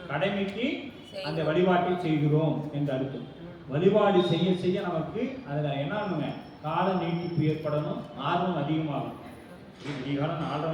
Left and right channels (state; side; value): identical; both; correlation 1.00